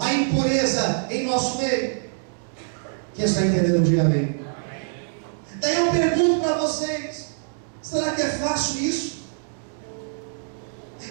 impureza em nosso meio. Quem está entendendo, diga amém. Daí eu pergunto para vocês: será que é fácil isso?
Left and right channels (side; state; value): left; silent; digital silence